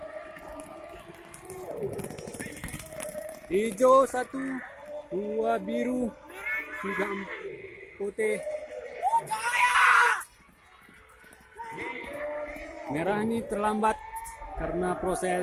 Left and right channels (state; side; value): identical; both; correlation 1.00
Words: Hijau 1, 2 biru, 3 putih. Merah ini terlambat karena